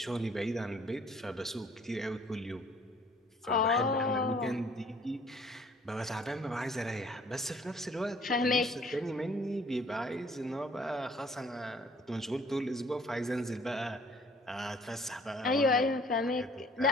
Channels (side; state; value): both; normal; correlation 0.58